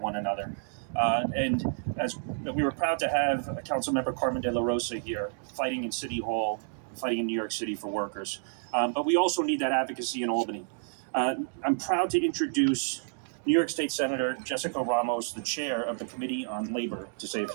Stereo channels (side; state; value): left; silent; digital silence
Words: another. And as we were proud to have Councilmember Carmen De La Rosa here, fighting in City Hall, fighting in New York City for workers. But we also need that advocacy in Albany. I'm proud to introduce New York State Senator Jessica Ramos, the chair of the Committee on Labor, to say a